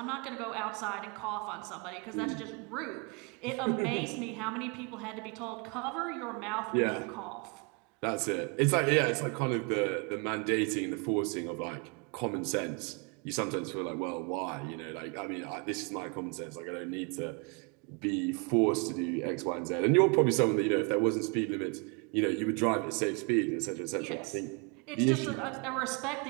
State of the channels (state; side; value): quieter; left; 33.4 dB